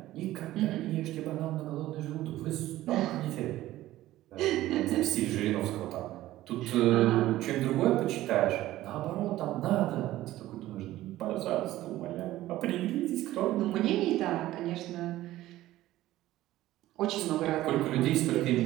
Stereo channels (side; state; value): left; quieter; 15.4 dB